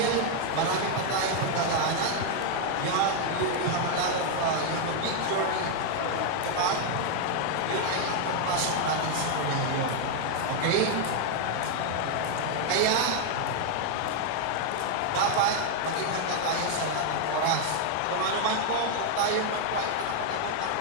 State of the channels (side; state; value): both; different; correlation 0.00